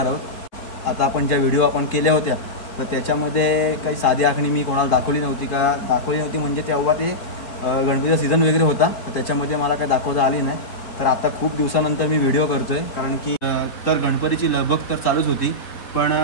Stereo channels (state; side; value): late; right; 4.1 ms